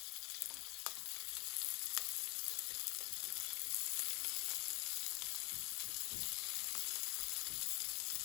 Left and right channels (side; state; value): right; quieter; 27.2 dB